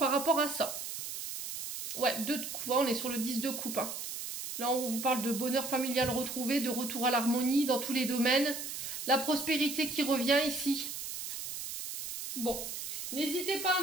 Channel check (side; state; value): right; noise; hiss, 6 dB below the sound